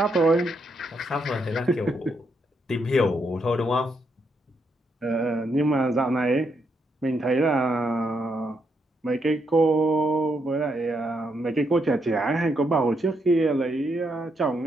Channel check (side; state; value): both; normal; correlation 0.78